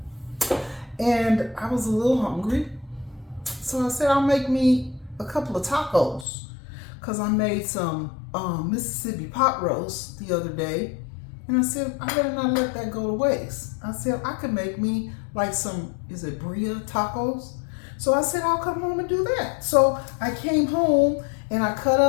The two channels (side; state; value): right; drops out; at 6.2 s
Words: And I was a little hungry, so I said I'll make me a couple of tacos, because I made some Mississippi pot roast the other day, and I said I better not let that go to waste. I said I could make me like some, is it Bria tacos? So I said I'll come home and do that. So I came home and I cut